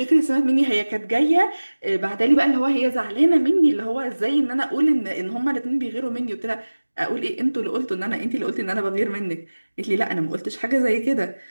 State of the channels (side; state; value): both; inverted; correlation -1.00